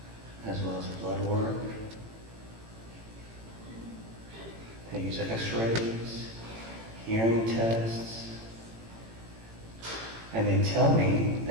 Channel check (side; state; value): left; late; 18 ms